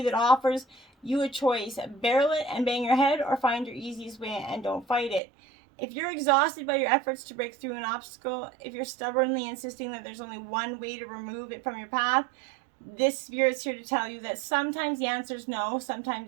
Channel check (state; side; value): drops out; left; at 5.2 s